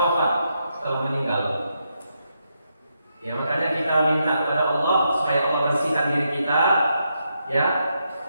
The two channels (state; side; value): inverted; both; correlation -0.81